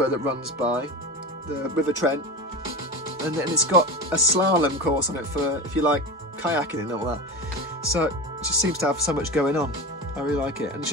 that runs by, the River Trent, and it's got a slalom course on it for if you like kayaking and all that. So it just seems to have so much going on. I really like it, and it's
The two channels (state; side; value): normal; both; correlation 0.25